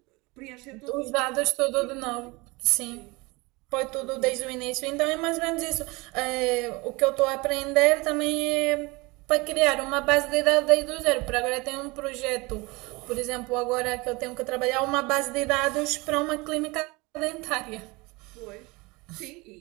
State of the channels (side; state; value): left; quieter; 24.5 dB